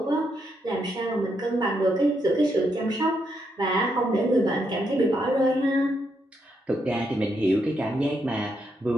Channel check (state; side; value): normal; both; correlation 0.79